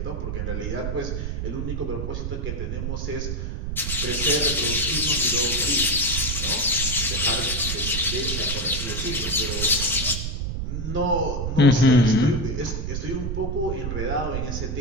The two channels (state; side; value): noise; right; rumble, 3 dB below the sound